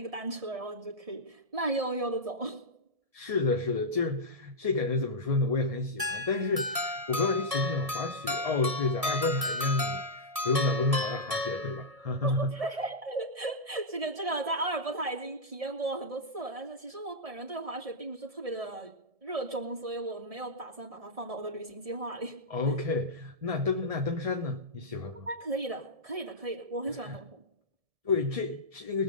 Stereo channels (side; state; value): left; late; 1.7 ms